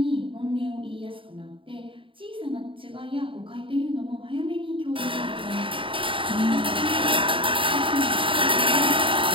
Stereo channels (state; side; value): late; left; 0.25 ms